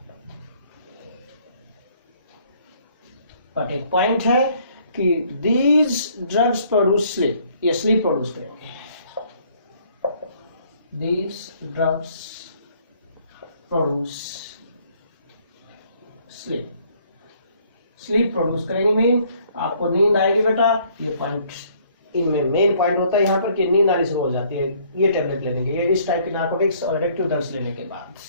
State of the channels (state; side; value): inverted; both; correlation -0.62